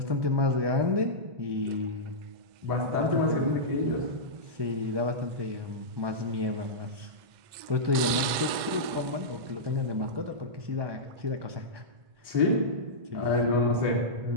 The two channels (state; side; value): late; left; 2.1 ms